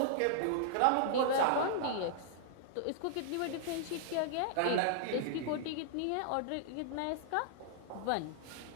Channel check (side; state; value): both; different; correlation -0.01